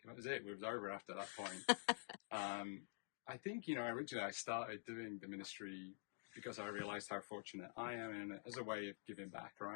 was it. It was over after that point. I think, originally I started doing the ministry because I realized how fortunate I am, and as a way of giving back,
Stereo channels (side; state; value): right; silent; digital silence